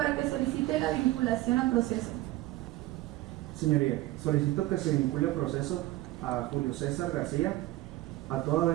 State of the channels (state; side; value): quieter; left; 17.3 dB